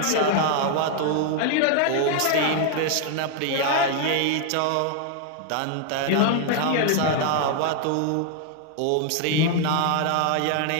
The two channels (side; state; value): both; different; correlation 0.00